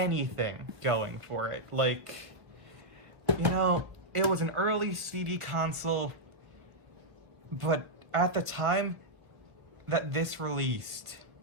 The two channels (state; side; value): late; left; 1.1 ms